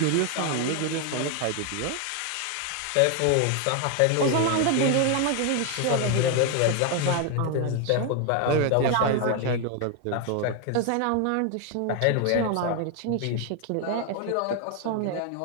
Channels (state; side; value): different; both; correlation 0.01